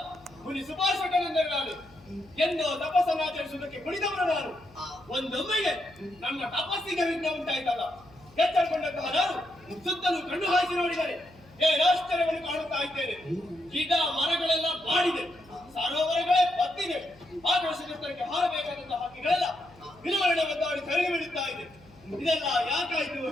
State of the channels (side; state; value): left; noise; hum, 26 dB below the sound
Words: ಮುನಿ ಸುಭಾಷಕನೆಂದರೆ ನಾನು ಎಂದು ತಪಸ್ಸನ್ನು ಆಚರಿಸುವುದಕ್ಕೆ ಕುಳಿತವನು ನಾನು. ಒಂದೊಮ್ಮೆಗೆ ನನ್ನ ತಪಸ್ಸಿಗೆ ವಿಘ್ನ ಉಂಟಾಯ್ತಲ್ಲ, ಎಚ್ಚರಗೊಂಡಂತಹ ನಾನು ಸುತ್ತಲೂ ಕಣ್ಣು ಹಾಯಿಸಿ ನೋಡಿದರೆ ಆಶ್ಚರ್ಯವನ್ನು ಕಾಣುತ್ತಾ ಇದ್ದೇನೆ. ಗಿಡ ಮರಗಳೆಲ್ಲ ಬಾಡಿದೆ, ಸರೋವರಗಳೇ ಬತ್ತಿದೆ, ಆಕಾಶಕ್ಕೆ ಹಾರಬೇಕಾದಂತಹ ಹಕ್ಕಿಗಳೆಲ್ಲ ವಿಲವರಣೆ ಒದ್ದಾಡಿ ಕರಗಿ ಬಿಡುತ್ತಾ ಇದೆ. ಇದೆಲ್ಲ ಯಾಕಾಯ್ತು,